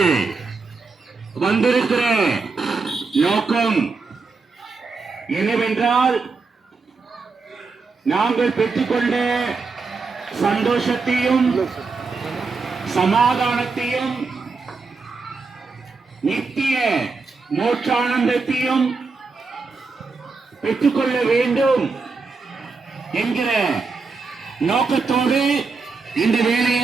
வந்திருக்கிற நோக்கம் என்னவென்றால், நாங்கள் பெற்றுக்கொண்ட சந்தோஷத்தையும் சமாதானத்தையும் நித்திய மோட்சானந்தத்தையும் பெற்றுக்கொள்ள வேண்டும் என்கிற நோக்கத்தோடு இந்த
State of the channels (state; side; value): quieter; left; 4.3 dB